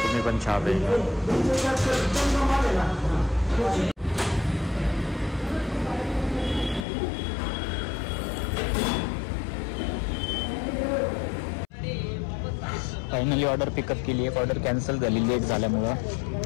पण चहा पिऊन. फायनली ऑर्डर पिकअप केली. एक ऑर्डर कॅन्सल झाली लेट झाल्यामुळं.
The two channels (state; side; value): drops out; right; at 6.9 s